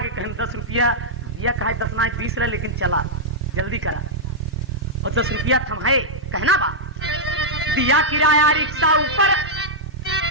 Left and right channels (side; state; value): both; normal; correlation -0.09